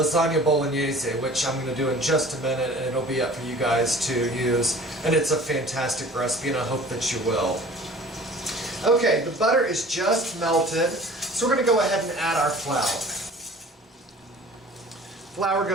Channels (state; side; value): normal; both; correlation 0.45